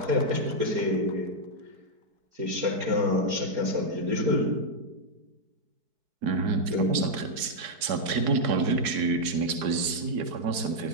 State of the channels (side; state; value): left; late; 4.6 ms